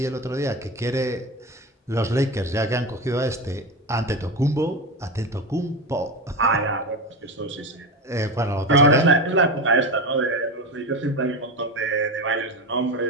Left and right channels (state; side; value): normal; both; correlation 0.21